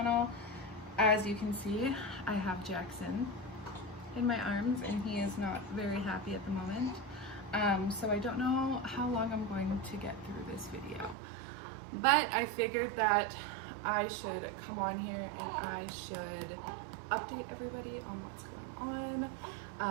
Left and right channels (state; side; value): drops out; left; at 11.2 s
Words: As you can see, I have Jackson in my arms and he is not very happy at the moment. So I don't know how long I'm going to get through this video, but I figured that I should come on here and I should update everybody on what's going